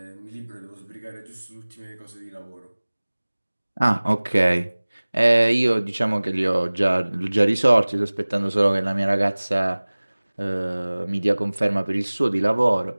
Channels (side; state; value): both; inverted; correlation -1.00